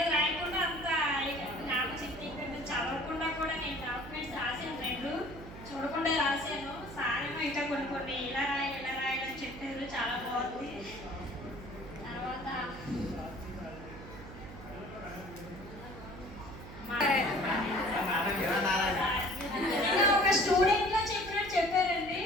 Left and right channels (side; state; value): right; noise; hum, 14 dB below the sound